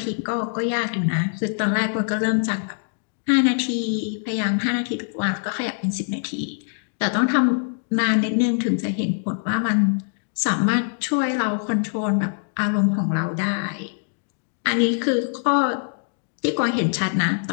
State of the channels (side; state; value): right; silent; digital silence